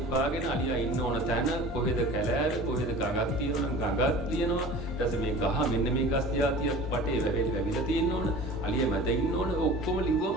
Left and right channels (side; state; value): both; normal; correlation 0.40